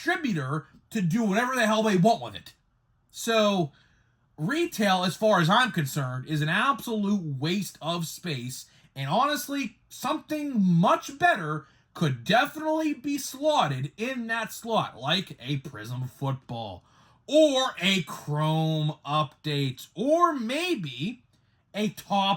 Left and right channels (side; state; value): both; identical; correlation 1.00